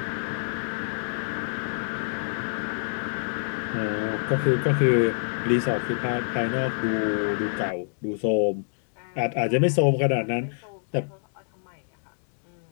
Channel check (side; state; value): right; silent; digital silence